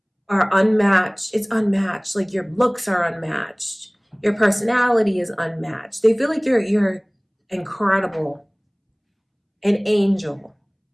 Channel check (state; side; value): identical; both; correlation 1.00